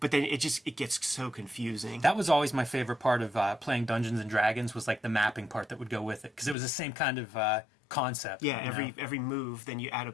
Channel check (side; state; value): right; drops out; at 6.6 s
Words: then it gets so confusing. That was always my favorite part of playing Dungeons and Dragons, was like the mapping part that would go with it, because it was the same kind of concept. Yeah, every move, then you add a